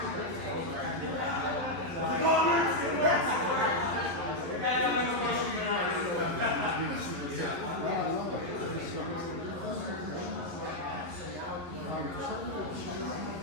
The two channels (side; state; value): left; late; 11 ms